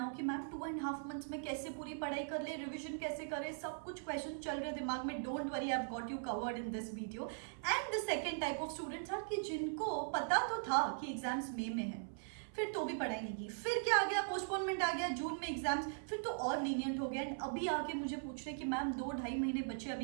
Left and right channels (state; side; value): silent; left; 51 dB below the other